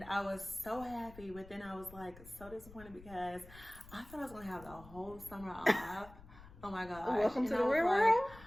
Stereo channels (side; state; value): left; noise; rumble, 19 dB below the sound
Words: I was so happy, but then I was like so disappointed because I thought I was going to have the whole summer off. Oh my gosh. Welcome to And the I was real like, world.